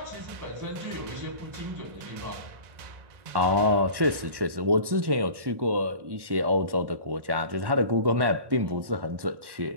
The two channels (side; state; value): left; late; 1.1 ms